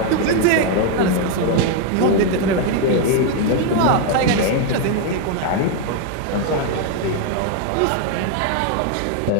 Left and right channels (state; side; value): different; both; correlation 0.01